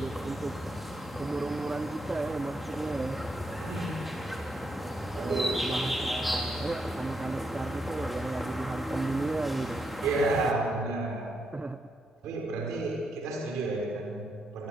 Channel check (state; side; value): normal; both; correlation 0.80